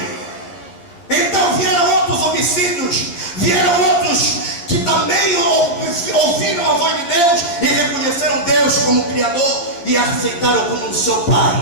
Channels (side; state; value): right; late; 12 ms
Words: Então vieram outros homicídios, vieram outros que também ouviram a voz de Deus e reconheceram Deus como Criador e aceitaram como seu